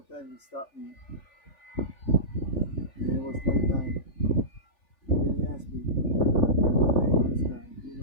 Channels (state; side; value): late; right; 3.5 ms